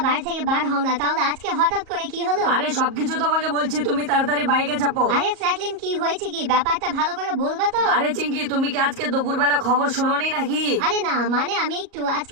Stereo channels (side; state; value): left; late; 38 ms